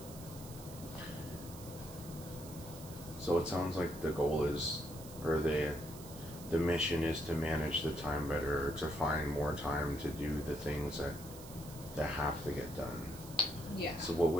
it sounds like the goal is, or the mission is to manage the time better, or to find more time to do the things that have to get done. Yeah. So what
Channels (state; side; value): noise; right; hiss, 16 dB below the sound